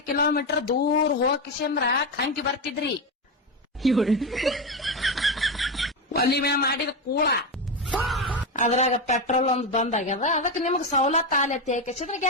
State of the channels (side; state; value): both; normal; correlation 0.13